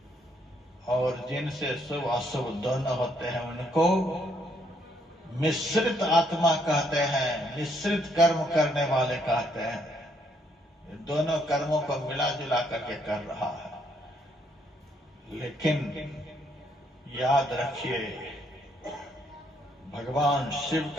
और जिनसे शुभ अशुभ दोनों होते हैं, उनको मिश्रित आत्मा कहते हैं, मिश्रित कर्म करने वाले कहते हैं। दोनों कर्मों को मिला जुला करके कर रहा है। लेकिन याद रखिए, भगवान शिव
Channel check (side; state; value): both; normal; correlation 0.71